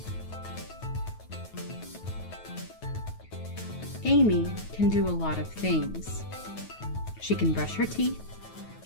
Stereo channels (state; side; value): late; right; 9.3 ms